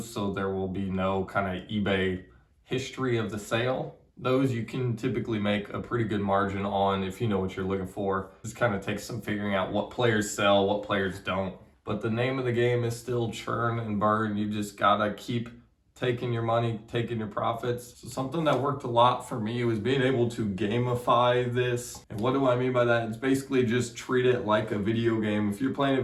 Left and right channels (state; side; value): identical; both; correlation 1.00